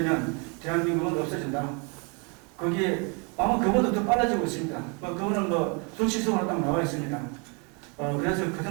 대한민국은 없어진다. 거기에 아마 그보다 더 빨라지고 있습니다. 그거는 수치적으로 딱 나와 있습니다. 그래서 그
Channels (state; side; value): quieter; left; 34.0 dB